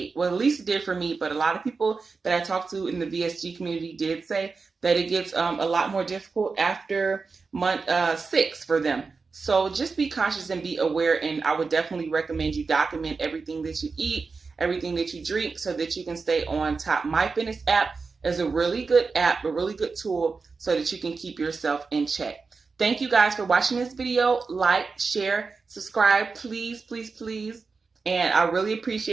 Well, at least it did for me, but a lot of people that I talked to in the VSG community did say that it gets a lot more difficult after month 6 for them. So just be conscious and be aware, and I would definitely recommend you document everything that you eat, everything that you drink, so that you can stay on top. My Fitness app is a really good app, a really good tool, so that you can keep yourself in check. Thank you guys for watching this video. Like, share, subscribe, please, please, please. And I really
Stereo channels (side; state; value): left; quieter; 4.6 dB